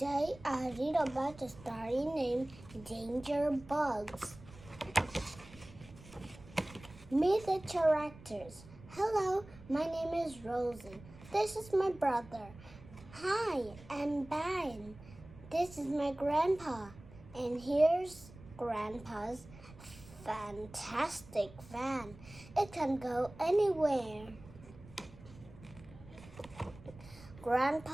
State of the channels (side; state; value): right; noise; rumble, 19 dB below the sound